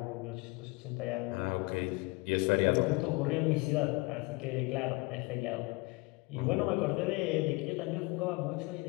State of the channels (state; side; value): quieter; right; 25.5 dB